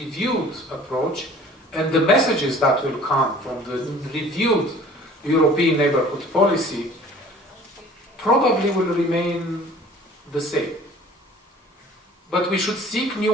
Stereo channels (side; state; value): both; normal; correlation 0.49